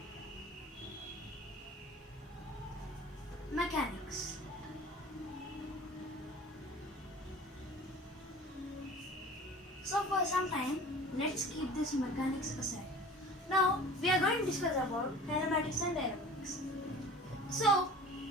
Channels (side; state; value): both; normal; correlation 0.42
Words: mechanics. So for some time, let's keep this mechanics aside. Now we are going to discuss about kinematics and dynamics. So